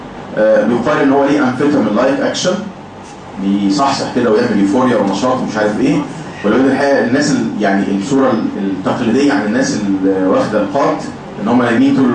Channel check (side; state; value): both; identical; correlation 1.00